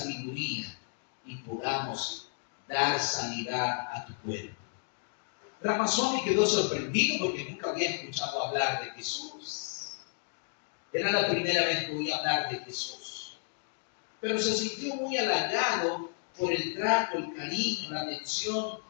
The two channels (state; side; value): silent; right; 56 dB below the other